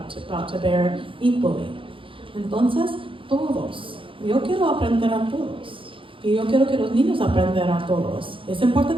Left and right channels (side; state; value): left; late; 0.25 ms